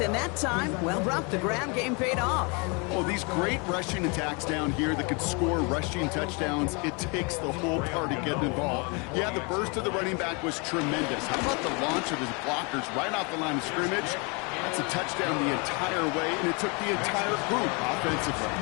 and that time, well, Brock, the ground game paid off. Oh, these great rushing attacks down here that could score rushing touchdowns, it takes the whole party getting involved. Yeah, the burst of the running back was tremendous. How about the launch of his blockers right off the line of scrimmage? That's a touchdown the entire way, and it took the entire group offensively.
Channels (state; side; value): quieter; right; 31.6 dB